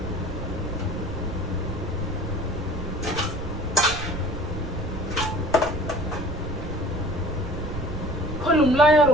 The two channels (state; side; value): noise; right; rumble, 6 dB below the sound